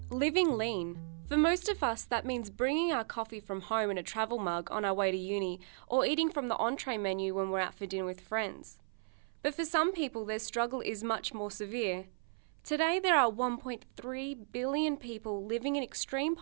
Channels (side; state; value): left; silent; 54 dB below the other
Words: Living lean. For most of us, that means bringing our coffee from home in a travel mug on our way to uni, or eating from the entree menu when we're out for dinner with friends. But for some people, their struggle is much more severe. Today, there are 1.3 billion people living in extreme